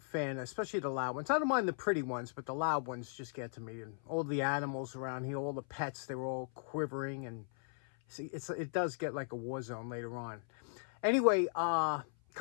especially the loud ones. I don't mind the pretty ones, but the loud ones just get to me. And all the animals around here, all the pets, they were all quivering. And see, it does get like a war zone later on. Anyway,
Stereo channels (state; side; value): silent; right; 53 dB below the other